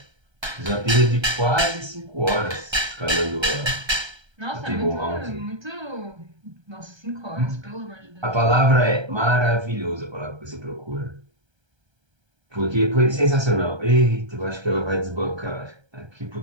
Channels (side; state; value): left; late; 1.3 ms